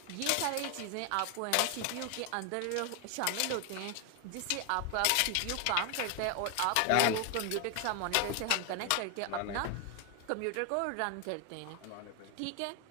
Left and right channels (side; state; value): both; different; correlation 0.01